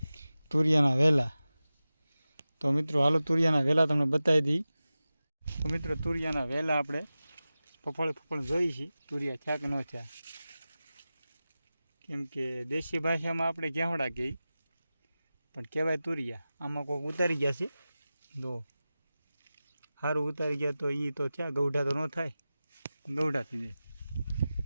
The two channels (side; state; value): both; inverted; correlation -0.95